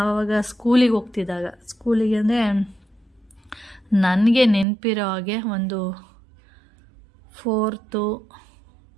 ಸ್ಕೂಲಿಗೆ ಹೋಗ್ತಿದ್ದಾಗ, ಸ್ಕೂಲಿಗೆ ಅಂದರೆ ನನಗೆ ನೆನಪಿರೋ ಹಾಗೆ ಒಂದು 4th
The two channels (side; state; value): left; drops out; at 4.7 s